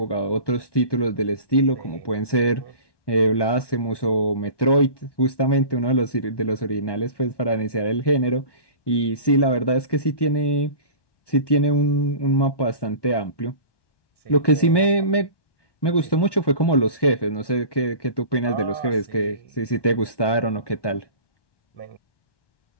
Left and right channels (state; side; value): late; right; 1.2 ms